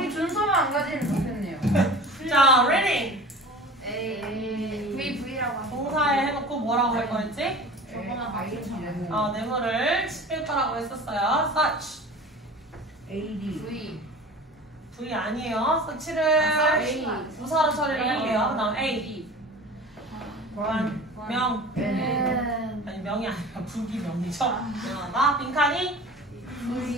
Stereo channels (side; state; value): both; normal; correlation 0.39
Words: 준서만 안 가지면 좋겠네요. 자, reading. V라고 하죠. 동사에 해놓고 뭐라고 할 거였지? 저거만 아이는 네모를 칠 거라고 했었어요. such. AD V 아니에요. such를 부사로 처리를 할게요. 그 다음 A. 명. N 아니, 명이 아니라 부기명이죠. 명하다. 빈칸이